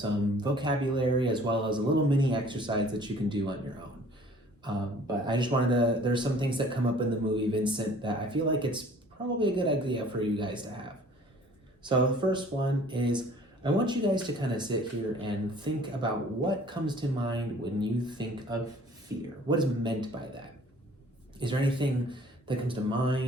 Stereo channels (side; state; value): both; normal; correlation 0.52